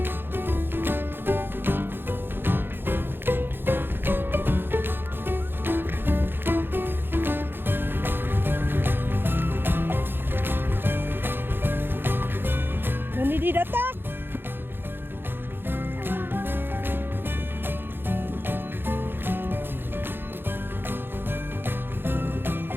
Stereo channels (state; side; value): late; left; 0.10 ms